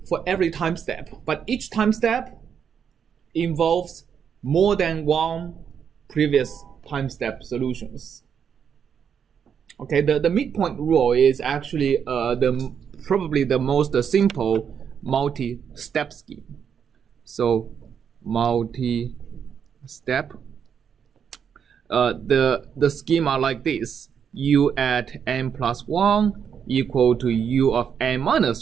for every time step, but each time step involves more than one previous time step solutions. Okay, the midpoint rule is actually probably the most simple multi-step scheme. So multi-step, the scheme are like this: u at n plus 1 equal to u of n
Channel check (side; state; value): left; quieter; 7.6 dB